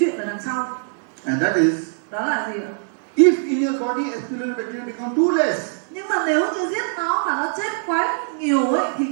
ở đằng sau. and that is, Đó là gì ạ? if in your body H. pylori bacteria become too less, Nhưng mà nếu như giết nó mà nó chết quá nhiều ấy, thì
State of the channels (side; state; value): left; silent; 64 dB below the other